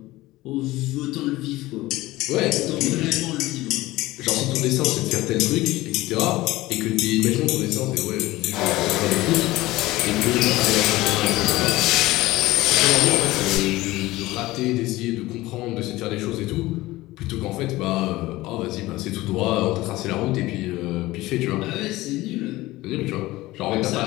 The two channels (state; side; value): quieter; right; 18.4 dB